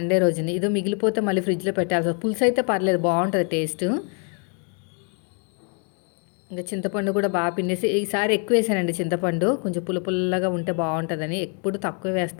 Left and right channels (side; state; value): right; quieter; 39.6 dB